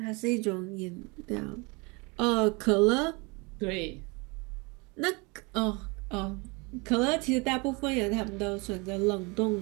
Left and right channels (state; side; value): quieter; left; 28.4 dB